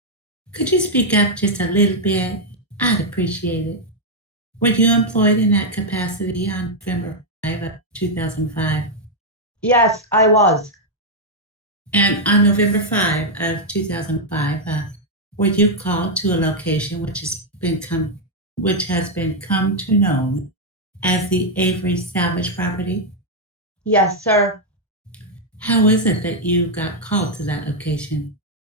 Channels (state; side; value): normal; both; correlation -0.01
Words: Could you speak up just a little bit? I'd appreciate it. Were you employed in that capacity on November 5 of 2005? Yes, I was. And on November 5 of 2005, were you called to a location which has been come to known as the Avery salvage property? Yes, sir. How is it that you got called to that location?